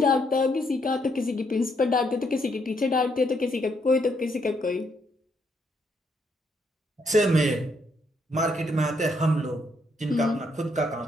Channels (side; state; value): both; normal; correlation 0.74